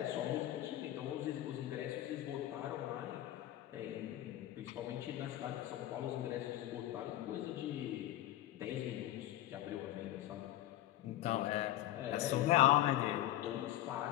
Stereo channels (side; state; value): right; quieter; 14.2 dB